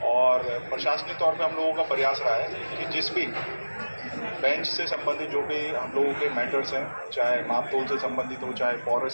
और प्रशासनिक तौर पे हम लोगों का प्रयास रहा है कि जिस भी बेंच से संबंधित जो भी हम लोगों के मैटर्स हैं, चाहे मापतोल से संबंधित हो, चाहे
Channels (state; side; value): inverted; both; correlation -1.00